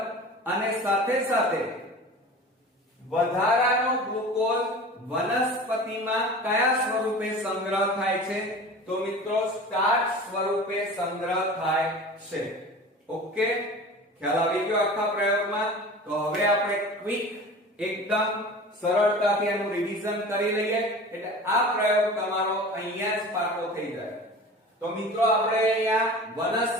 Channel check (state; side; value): normal; both; correlation 0.37